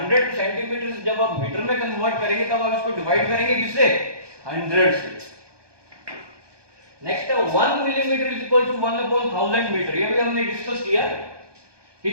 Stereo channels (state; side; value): late; left; 1.2 ms